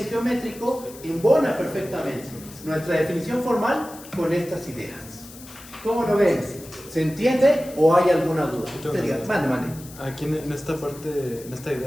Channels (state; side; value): noise; left; hiss, 18 dB below the sound